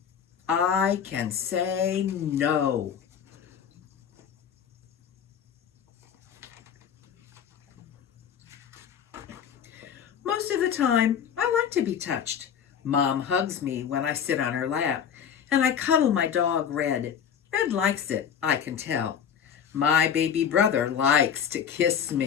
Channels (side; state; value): right; quieter; 8.1 dB